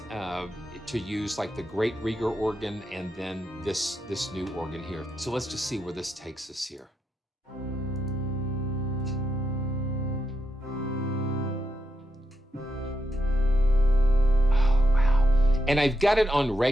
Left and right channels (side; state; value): both; normal; correlation 0.84